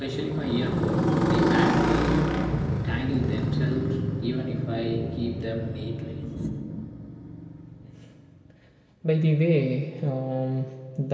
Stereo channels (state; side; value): identical; both; correlation 1.00